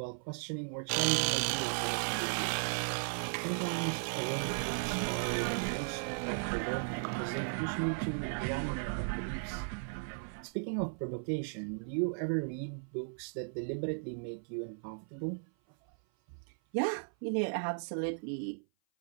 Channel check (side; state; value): left; silent; 54 dB below the other